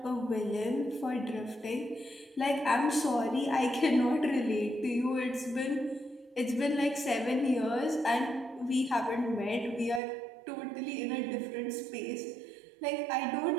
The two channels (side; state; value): left; drops out; at 10.0 s